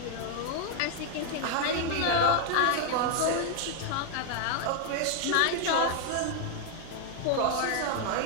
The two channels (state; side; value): different; both; correlation 0.00